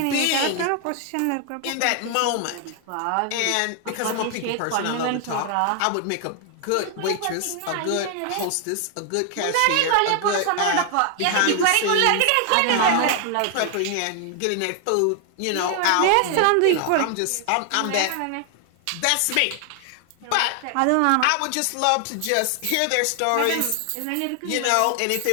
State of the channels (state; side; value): different; both; correlation 0.00